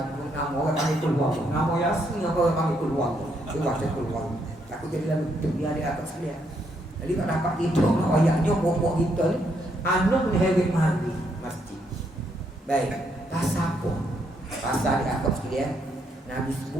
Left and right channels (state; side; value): normal; both; correlation 0.75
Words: orang panggil keluar Allah. Nama Yasin orang panggil keluar Allah. Dia baca keluar. Aku jadi lalu dia atas sekalian. Jadi tak dapat tidur ayahnya pokok kita ni anak ni hebat mandi masjid. Baik, pasal apa? Pasal di atas sekalian Nabi